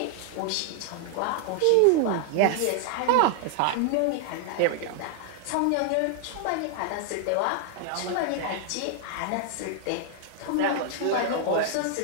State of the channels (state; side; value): different; both; correlation 0.00